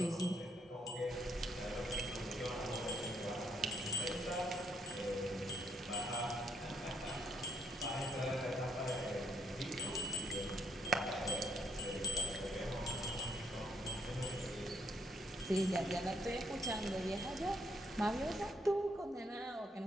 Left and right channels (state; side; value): normal; both; correlation 0.71